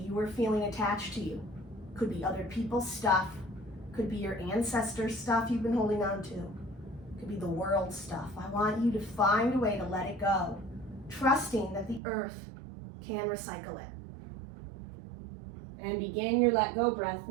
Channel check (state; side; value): drops out; left; at 12.0 s